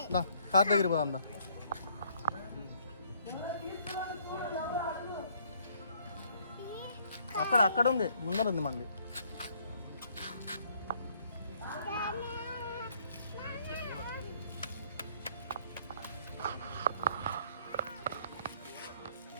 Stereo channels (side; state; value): both; inverted; correlation -0.64